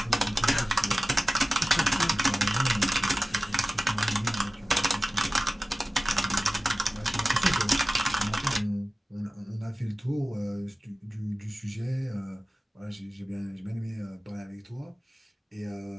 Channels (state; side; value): normal; both; correlation 0.96